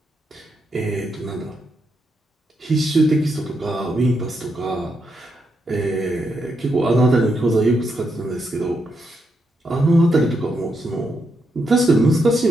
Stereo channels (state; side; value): normal; both; correlation 0.81